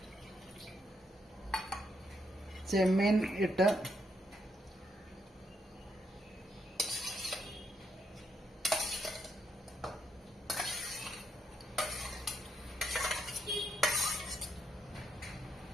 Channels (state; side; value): normal; both; correlation 0.76